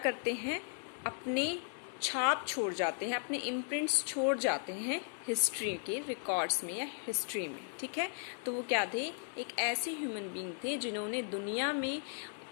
हैं, अपने छाप छोड़ जाते हैं, अपने इम्प्रिंट्स छोड़ जाते हैं हिस्ट्री के रिकॉर्ड्स में या हिस्ट्री में, ठीक है। तो वो क्या थे? एक ऐसे ह्यूमन बीइंग थे जिन्होंने दुनिया में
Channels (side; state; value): right; silent; 54 dB below the other